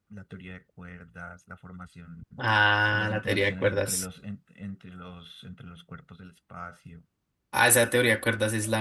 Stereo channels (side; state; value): both; identical; correlation 1.00